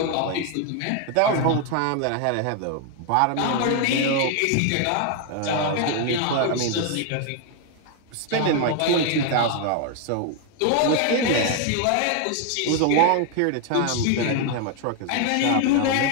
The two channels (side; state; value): both; different; correlation 0.00